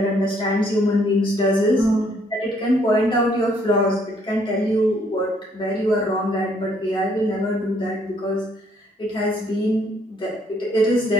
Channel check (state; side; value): normal; both; correlation 0.66